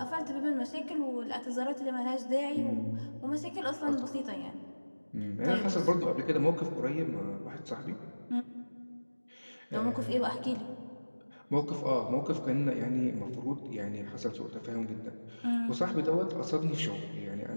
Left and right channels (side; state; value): both; inverted; correlation -1.00